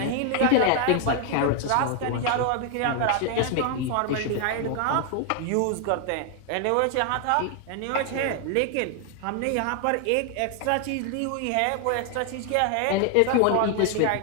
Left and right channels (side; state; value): both; different; correlation 0.00